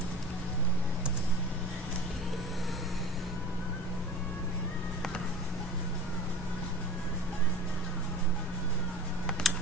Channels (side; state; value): both; normal; correlation 0.38